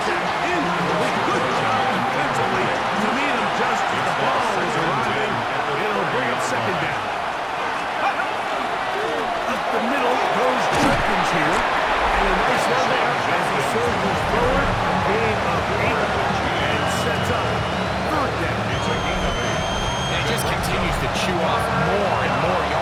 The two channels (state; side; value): identical; both; correlation 1.00